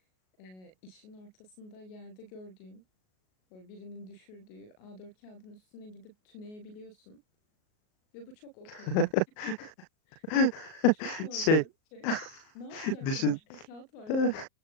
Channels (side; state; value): right; late; 38 ms